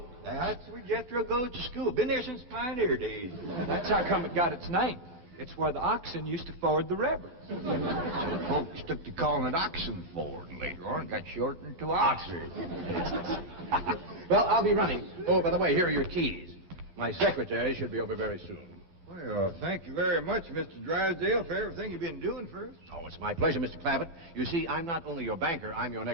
That's where Jethro goes to school. Been there since pioneer days. That's how come it got its name. It's where the oxen used to ford the river. So folks took to calling it Oxen Ford, and later on got shortened to Oxford. Well, I'll be running. Oh, by the way, here are your keys. My secretary should be over very soon. Well, thank you very much, Mr. Drysdale, for everything you've been doing for us. Oh, it's my pleasure, Mr. Clampett. You see, I'm not only your banker, I'm your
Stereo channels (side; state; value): left; late; 12 ms